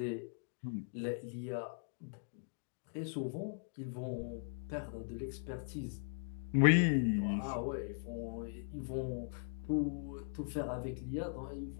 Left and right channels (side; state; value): right; silent; digital silence